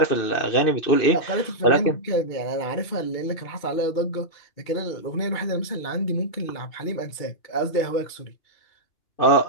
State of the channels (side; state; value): right; late; 2.8 ms